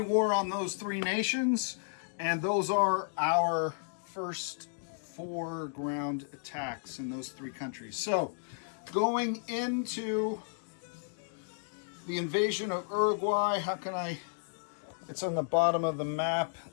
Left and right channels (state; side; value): silent; right; digital silence